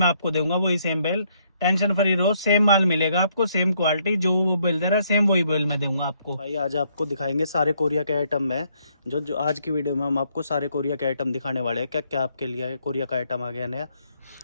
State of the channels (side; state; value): both; inverted; correlation -0.71